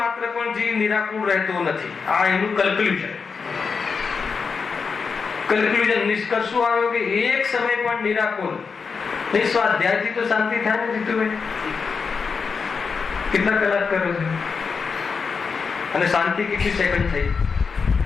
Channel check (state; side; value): quieter; right; 5.3 dB